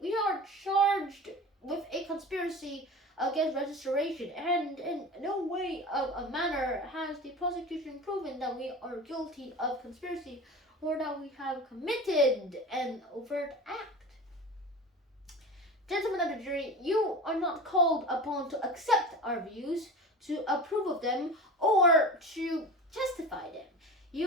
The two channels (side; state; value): both; normal; correlation 0.33